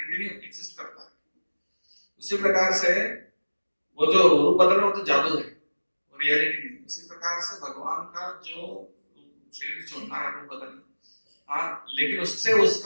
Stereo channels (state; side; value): inverted; both; correlation -1.00